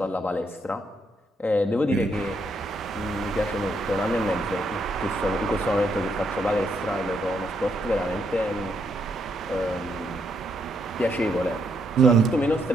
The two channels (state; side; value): normal; both; correlation 0.76